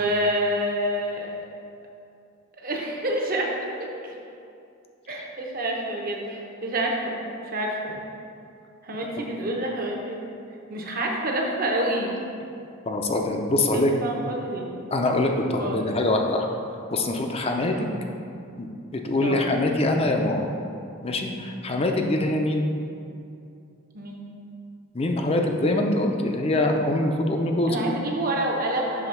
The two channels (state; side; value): normal; both; correlation 0.31